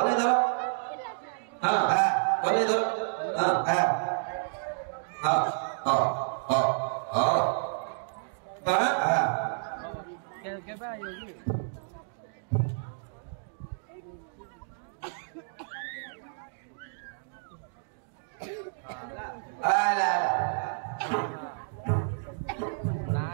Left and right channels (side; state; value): left; silent; digital silence